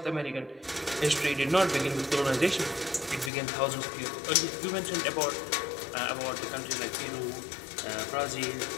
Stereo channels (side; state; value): right; drops out; at 3.3 s